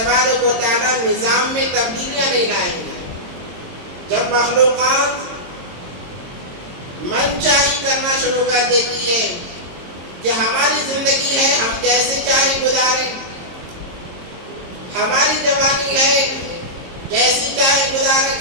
و تعالی نظام میں تبدیلیاں نہیں لائیں گے جب مخلوقات من چاہی کرنا شروع کر دیتی ہے کہ ہماری زندگی ہے ہم جیسے چاہے گزاریں ہماری جوانی ہے جیسی چاہے گزاریں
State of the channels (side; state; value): left; late; 22 ms